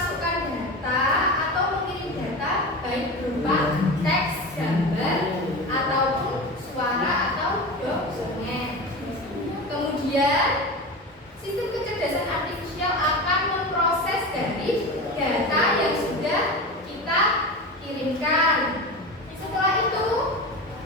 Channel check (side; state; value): both; normal; correlation 0.27